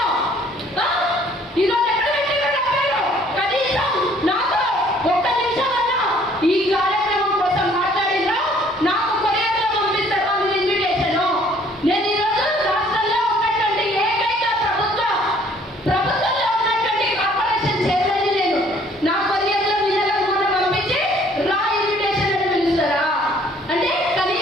ఈరోజు ఎక్కడ పెట్టారు నా పేరు? కనీసం నాకు ఒక్క నిమిషం అన్నా ఈ కార్యక్రమం కోసం మాట్లాడినా నాకు కొరియర్లో పంపిస్తారు మీ ఇన్విటేషన్. నేను ఈరోజు రాష్ట్రంలో ఉన్నటువంటి ఏకైక ప్రభుత్వంలో ఉన్నటువంటి కార్పొరేషన్ చైర్మన్ నేను. నా కొరియర్లో నిజంగా పంపించి రా ఇన్విటేషన్ అని పిలుస్తారా? అంటే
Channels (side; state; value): both; normal; correlation 0.59